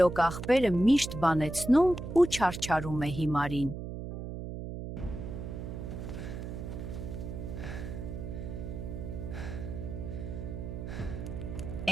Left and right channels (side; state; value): right; noise; hum, 7 dB below the sound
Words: աղբերը միշտ բանեցնում ու չարչարում է հիմարին։